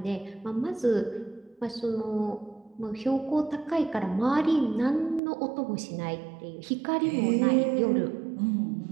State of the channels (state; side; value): drops out; left; at 5.2 s